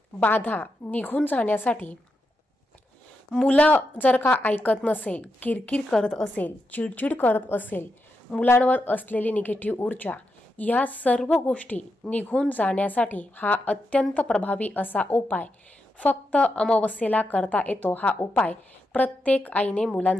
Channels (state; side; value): normal; both; correlation 0.85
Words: बाधा निघून जाण्यासाठी, मुलं जर का ऐकत नसेल, किरकिर करत असेल, चिडचिड करत असेल, मुलांवर असलेली निगेटिव्ह ऊर्जा, या सर्व गोष्टी निघून जाण्यासाठी हा अत्यंत प्रभावी असा उपाय फक्त अमावस्येला करता येतो। हा उपाय प्रत्येक आईने